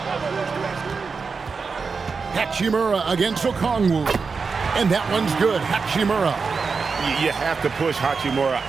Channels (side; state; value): left; quieter; 5.0 dB